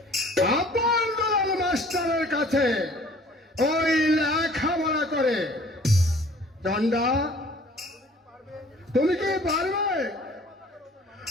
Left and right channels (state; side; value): normal; both; correlation 0.52